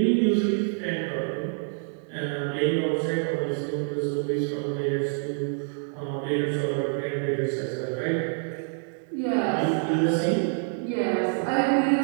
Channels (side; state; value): left; silent; 58 dB below the other